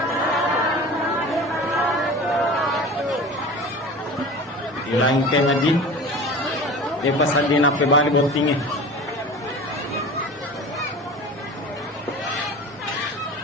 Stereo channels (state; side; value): normal; both; correlation 0.36